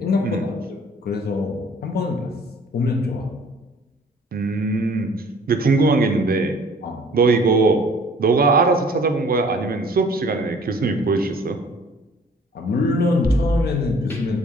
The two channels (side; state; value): both; normal; correlation 0.54